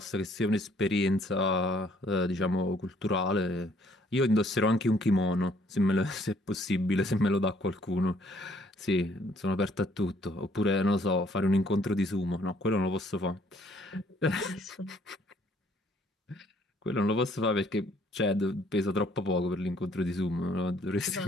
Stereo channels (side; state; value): both; normal; correlation 0.63